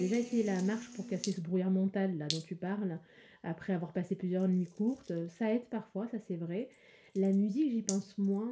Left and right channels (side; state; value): both; identical; correlation 1.00